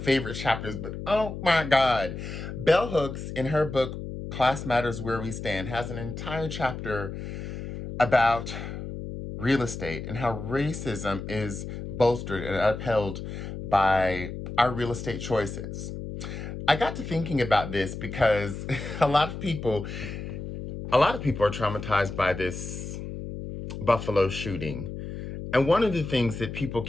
chapters, but oh my God. Bell Hooks, in her book, Class Matters Where We Stand, has an entire chapter about real estate and how racism is bolstered and upheld by our real estate choices. I got to thinking about this because a lot of people, a lot of people are traumatized by this Buffalo shooting. And one of the things that people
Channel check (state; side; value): noise; left; hum, 8 dB below the sound